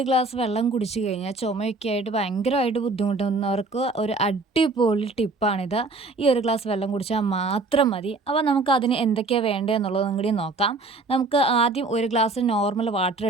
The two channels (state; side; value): quieter; left; 3.5 dB